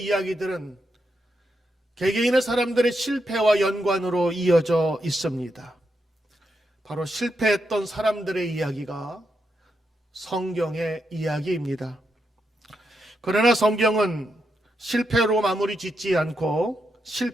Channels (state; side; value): normal; both; correlation 0.83